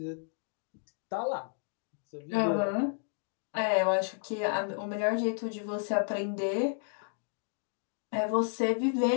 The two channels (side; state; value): right; silent; digital silence